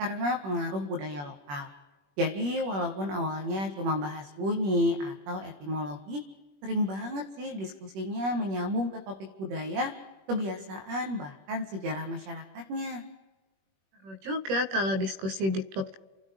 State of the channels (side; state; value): left; late; 21 ms